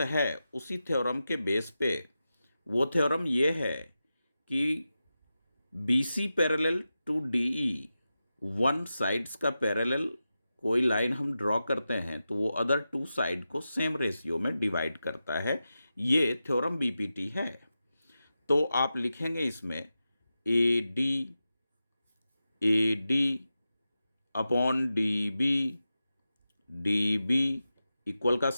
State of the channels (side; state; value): both; inverted; correlation -0.91